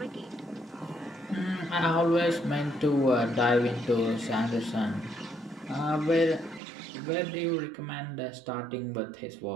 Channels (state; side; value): drops out; left; at 6.6 s